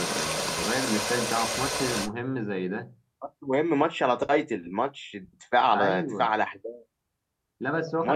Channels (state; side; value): identical; both; correlation 1.00